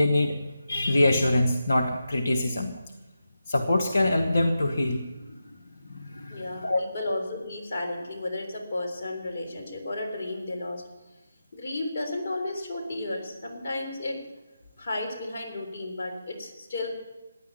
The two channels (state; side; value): inverted; both; correlation -0.89